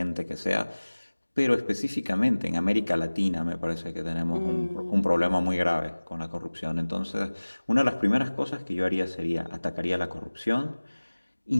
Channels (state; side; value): inverted; both; correlation -1.00